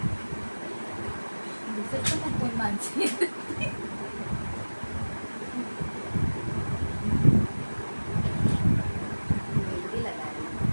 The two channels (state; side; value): inverted; both; correlation -1.00